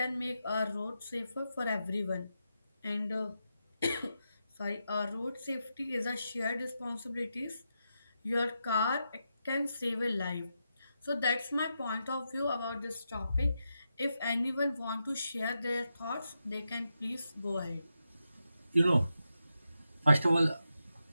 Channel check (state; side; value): inverted; both; correlation -0.86